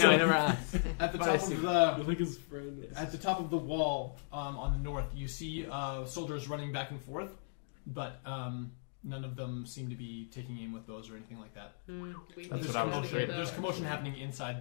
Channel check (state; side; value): silent; right; digital silence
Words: I never asked. At the But top I see. of I the think his friend. At the top of the wall on the north, you see soldiers running back and forth, but none of them seem to be taking aim with bows or anything like that. That's what I was afraid of. There's commotion happening